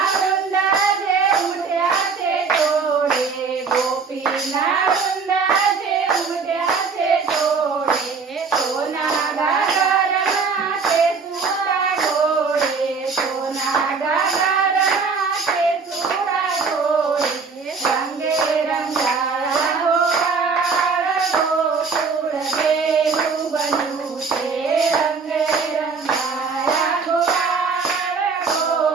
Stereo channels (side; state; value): left; quieter; 5.0 dB